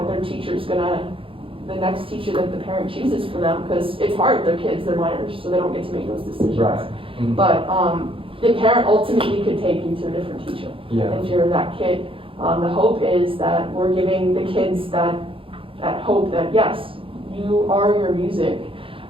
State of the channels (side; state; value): left; late; 0.26 ms